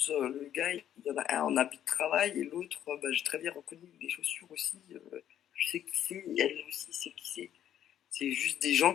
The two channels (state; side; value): quieter; right; 10.7 dB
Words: le gars, il y en a un en habit de travail et l'autre, j'ai très bien reconnu les chaussures aussi. Je sais qui c'est, et elle aussi sait qui c'est. C'est juste des gens